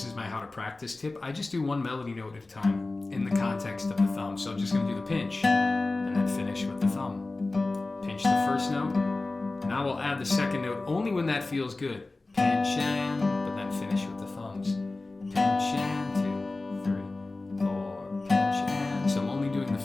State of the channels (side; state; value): right; quieter; 3.2 dB